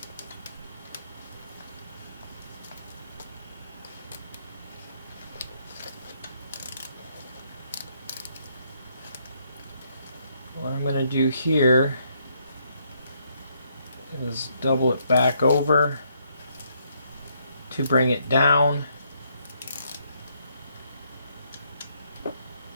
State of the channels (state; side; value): inverted; both; correlation -0.72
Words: What I'm going to do here is double it back over to bring it down.